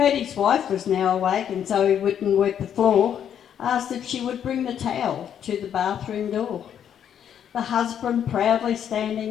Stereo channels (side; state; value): right; quieter; 9.1 dB